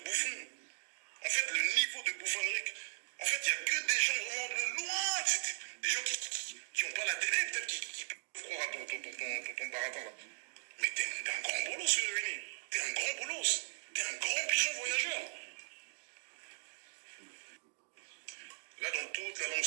En fait, le niveau de bouffonnerie. En fait, il n'y a que des gens vraiment de loin. C'est des gens qui n'ont pas la télé, peut-être qui peuvent croire à ton baratin là. Mais t'es un grand bolos, Winnie. T'es un grand bolos. T'es un grand pigeon voyageur. Là, dans toute la longue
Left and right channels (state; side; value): silent; left; digital silence